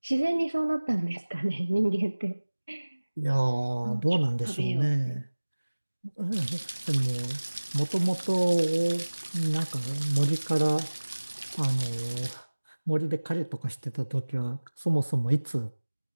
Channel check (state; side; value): inverted; both; correlation -1.00